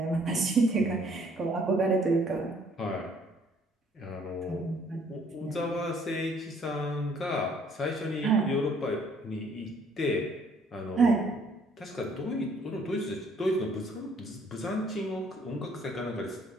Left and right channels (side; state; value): both; normal; correlation 0.62